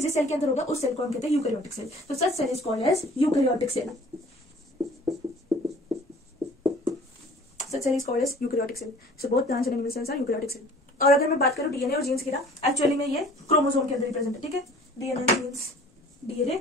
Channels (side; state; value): both; normal; correlation 0.49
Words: जिस सेल के अंदर होगा उस सेल को हम कहते हैं यूकैरियोटिक सेल। तो such cell is called as eukaryotic cell. Such cell is called as eukaryotic cell. So both plants and animal cells are eukaryotic cell. और अगर मैं बात करूं डीएनए और जीन्स की ना, एक्चुअली में ये क्रोमोसोम के अंदर ही प्रेजेंट है। ठीक है, DNA and genes, DNA